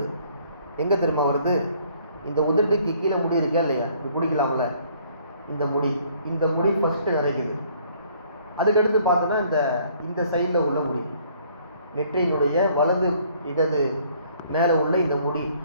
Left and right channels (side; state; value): both; inverted; correlation -0.60